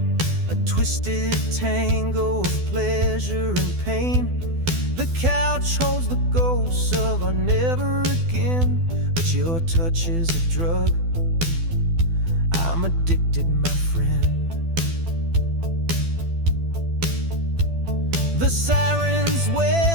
a twisted tango of pleasure and pain. The couch holds the ghosts of our never again, but your touch is a drug. I'm addicted, my friend. The sirens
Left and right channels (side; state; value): left; late; 12 ms